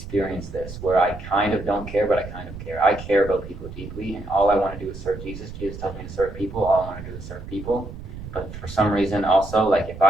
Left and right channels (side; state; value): right; noise; rumble, 12 dB below the sound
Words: this, where I kind of don't care, but I kind of care. I care about people deeply, and all I want to do is serve Jesus. Jesus tells me to serve people. All I want to do is serve people. But for some reason, also, like, if